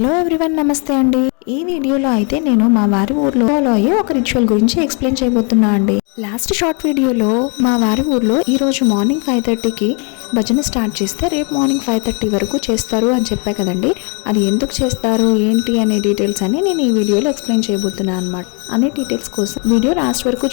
ఎవ్రీవన్, నమస్తే అండి. ఈ వీడియోలో అయితే నేను మా వారి ఊర్లో ఫాలో అయ్యే ఒక రిచువల్ గురించి ఎక్స్ప్లెయిన్ చేయబోతున్నా అండి. లాస్ట్ షార్ట్ వీడియోలో మా వారి ఊర్లో ఈ రోజు మార్నింగ్ 5:30కి భజన స్టార్ట్ చేస్తే రేపు మార్నింగ్ 5:30 వరకు చేస్తారు అని చెప్పా కదండి. అది ఎందుకు చేస్తారు ఏంటి అనే డీటెయిల్స్ అని నేను ఈ వీడియోలో ఎక్స్ప్లెయిన్ చేయబోతున్నా అనమాట. అనే డీటెయిల్స్ కోసం వీడియో లాస్ట్ వరకు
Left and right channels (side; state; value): right; quieter; 35.8 dB